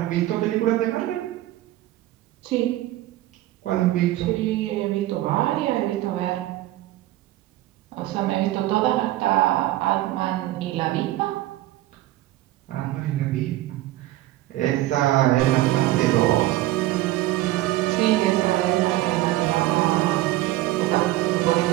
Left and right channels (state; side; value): quieter; left; 15.9 dB